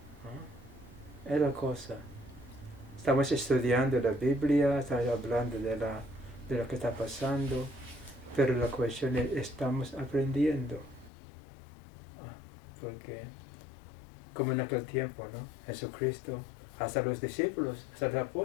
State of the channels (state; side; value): drops out; right; at 11.1 s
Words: ¿No? Es la cosa. Estamos estudiando la Biblia, estamos hablando de lo que está pasando, pero la cuestión es, ¿estamos aprendiendo? Porque, como en aquel tiempo, ¿no? Jesucristo, hasta los discípulos, hasta los